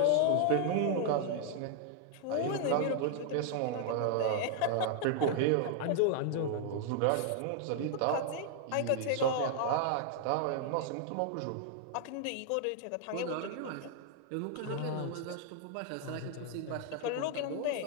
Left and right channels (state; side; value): different; both; correlation 0.00